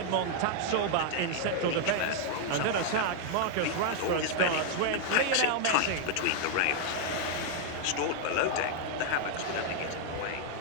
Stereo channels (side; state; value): both; different; correlation 0.00